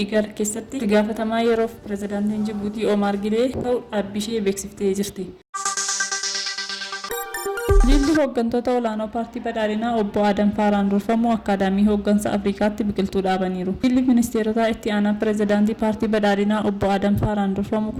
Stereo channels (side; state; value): both; identical; correlation 1.00